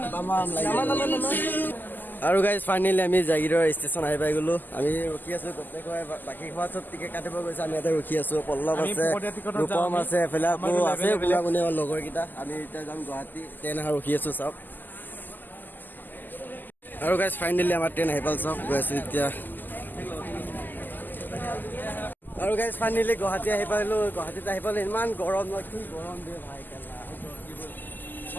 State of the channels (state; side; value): late; right; 0.087 ms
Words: আৰু গাইছ ফাইনেলি আমি জাগিৰৰ ষ্টেচন আহি পাই গলো আমি ৰখি আছো গোটেই বাকী খোৱা চব টিকেট কাটিব গৈছে আমি ইয়াতে ৰখি আছো পল্লৱ আছে ৰূপম আছে এফালে আকৌ আছে কোনে লগৰ কেইটা আমি এতিয়া যাম গুৱাহাটী ট্ৰেইন অহা ৰখি আছো চব আৰু গাইছ ফাইনেলি আমাৰ ট্ৰেইন আহি পাল চব গৈ আছো এতিয়া আৰু গাইছ ফাইনেলি গুৱাহাটী আহি পালো গুৱাহাটীত আহি পালো ইমান গৰম ন কি গৰম দিয়ে ভাই কেলা